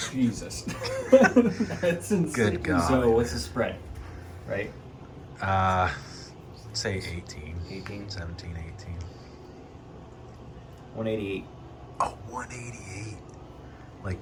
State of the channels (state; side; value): identical; both; correlation 1.00